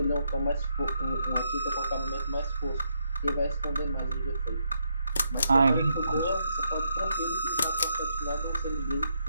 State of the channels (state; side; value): inverted; both; correlation -0.78